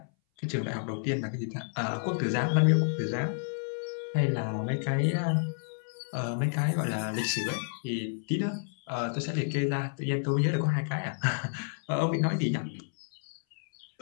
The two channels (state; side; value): silent; right; 58 dB below the other